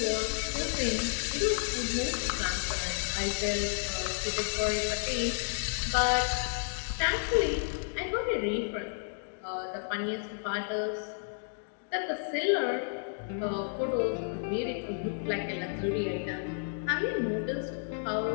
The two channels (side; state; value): right; silent; digital silence